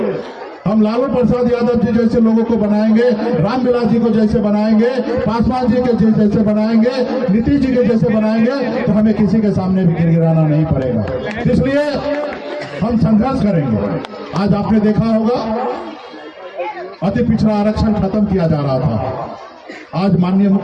हम लालू प्रसाद यादव जी जैसे लोगों को बनाएंगे, रामविलास जी को जैसे बनाएंगे, पासवान जी के जैसे बनाएंगे, नीतीश जी के जैसे बनाएंगे, तो हमें किसी के सामने भी गिड़गिड़ाना नहीं पड़ेगा। इसलिए हम संघर्ष करेंगे। आज आपने देखा होगा अति पिछड़ा आरक्षण खत्म किया जा रहा था। आज माननीय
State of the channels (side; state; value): both; identical; correlation 1.00